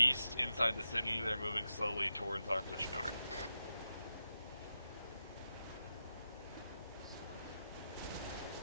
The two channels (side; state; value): both; inverted; correlation -0.89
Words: inside the city. They're moving slowly towards our position. Over.